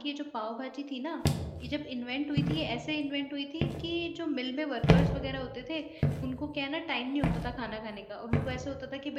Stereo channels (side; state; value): both; identical; correlation 1.00